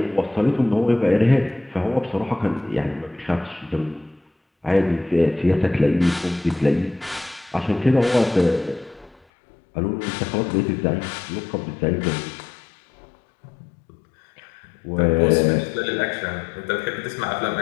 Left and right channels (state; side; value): drops out; right; at 9.2 s